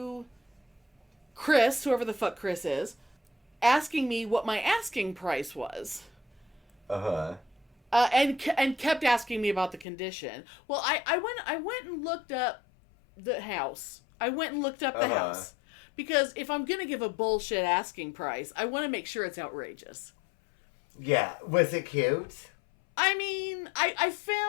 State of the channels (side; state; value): right; drops out; at 9.9 s